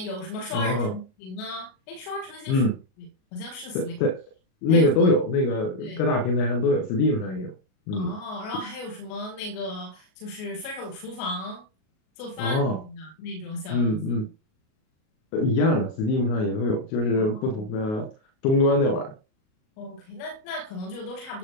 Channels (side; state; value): right; late; 38 ms